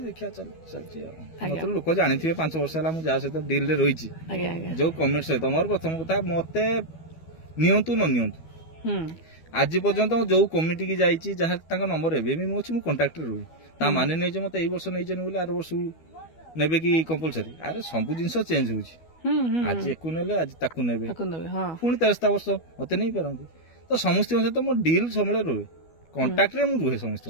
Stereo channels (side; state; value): right; late; 12 ms